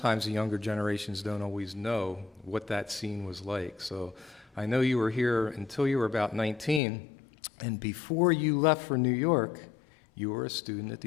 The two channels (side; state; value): right; drops out; at 6.8 s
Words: the younger generations don't always know what that scene was like. So I know you were here until you were about 19, and before you left for New York, you were a student at